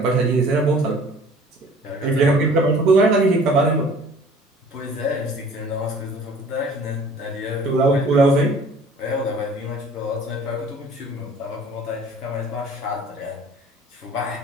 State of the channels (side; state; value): both; normal; correlation 0.50